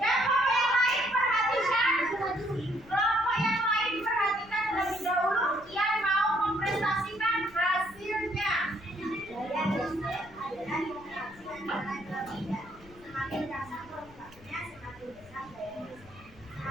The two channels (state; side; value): noise; left; rumble, 23 dB below the sound